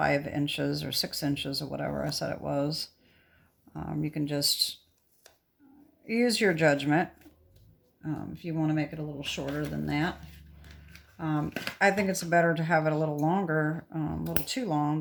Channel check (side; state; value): both; identical; correlation 1.00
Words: inches or 6 inches or whatever I said it was. You can just use your judgment if you want to make it a little shorter than that. I think it's better to have it a little longer, a little too long